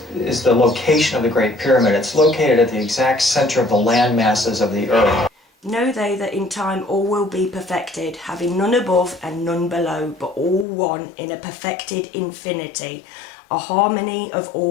the location of the Great Pyramid. It's located at the exact center of the land masses of the Earth. Know they that in time all will be perfected, having none above and none below, but all one in a perfected infinity, a harmony of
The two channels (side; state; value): right; drops out; at 10.7 s